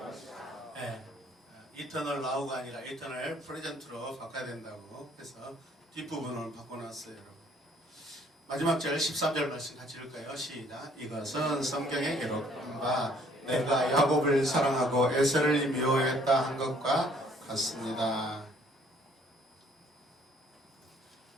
네, 이터널 나우가 아니라 이터널 프레젠트로 바꿔야 된다고 해서 뒷부분을 바꿔놨어요. 여러분. 마지막 절 13절 말씀 같이 읽을까요? 시작. 이것은 성경에 기록한 바 내가 야곱을 사랑하고 에서를 미워했다 한 것과 같습니다.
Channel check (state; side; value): normal; both; correlation 0.61